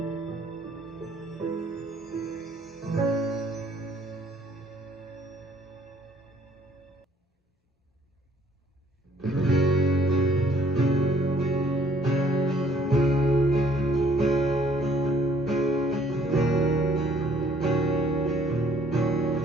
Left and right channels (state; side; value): normal; both; correlation 0.61